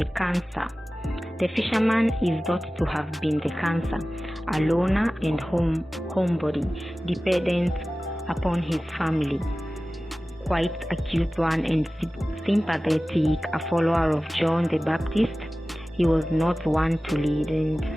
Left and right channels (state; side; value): normal; both; correlation 0.96